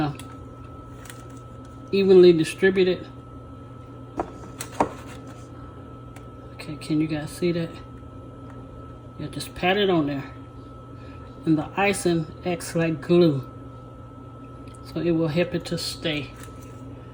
evenly distributed. Okay, can you guys see that? Yeah, just pat it on there. And the icing acts like glue, so it will help it to stay.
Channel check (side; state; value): both; identical; correlation 1.00